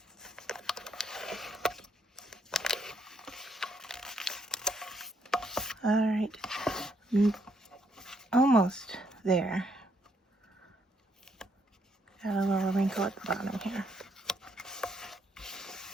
All right, almost there. Got a little wrinkle at the bottom here.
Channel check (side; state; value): both; normal; correlation 0.73